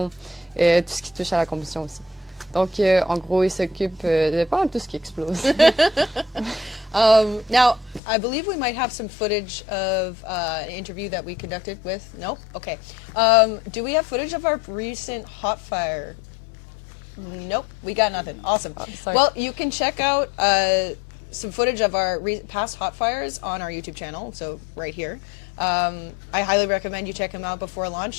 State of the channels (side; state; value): right; drops out; at 8.0 s